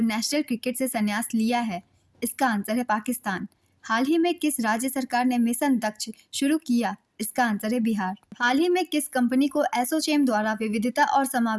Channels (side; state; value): both; identical; correlation 1.00